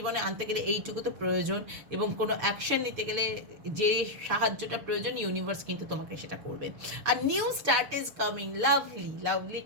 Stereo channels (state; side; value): late; left; 6.7 ms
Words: আনতে গেলে এইটুকু তো প্রয়োজন, এবং কোনো অ্যাকশন নিতে গেলে যে সাহায্যটা প্রয়োজন ইউনিভার্স কিন্তু তোমাকে সেটা করবে। আর new start is coming, lovely lovely